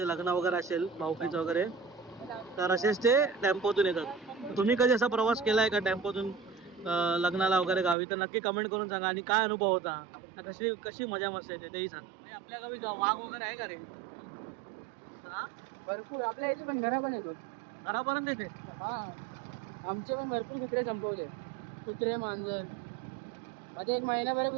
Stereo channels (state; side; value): drops out; left; at 8.0 s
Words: लग्न वगैरे असेल भाऊकीचं वगैरे तर असेच ते टेम्पोतून येतात. तुम्ही कधी असा प्रवास केला आहे का टेम्पोतून लग्नाला वगैरे गावी तर नक्की कमेंट करून सांगा. आणि काय अनुभव होता, कशी कशी मजा मस्त येते तेही सांगा. म्हणजे आपल्या गावी वाघ वगैरे आहे का रे? हा भरपूर आपल्या इथे पण घरा पण येतो. घरापर्यंत येते. हा आमचे पण भरपूर कुत्रे संपवले. कुत्रे मांजर मध्ये 1